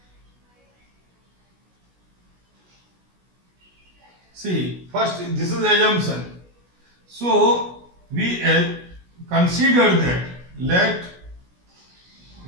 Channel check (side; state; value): left; late; 16 ms